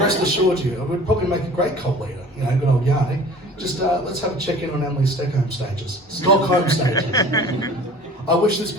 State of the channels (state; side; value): normal; both; correlation 0.45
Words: assured you, it would probably make a great cult leader. You know, good old Janek. Just let's have a check-in on Emily's Stockholm stages. I wish this